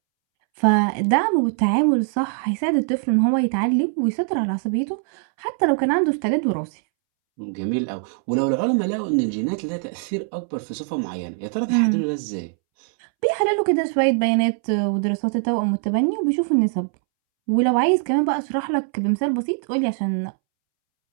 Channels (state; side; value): silent; left; 64 dB below the other